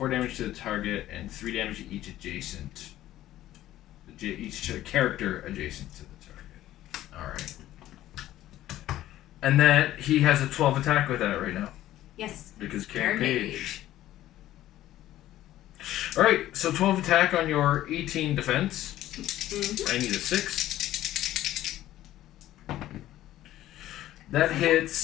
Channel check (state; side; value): quieter; right; 14.0 dB